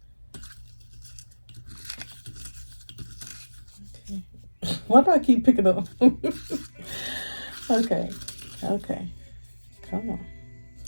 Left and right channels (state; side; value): inverted; both; correlation -1.00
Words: Okay. Why do I keep picking up? Okay. Come on.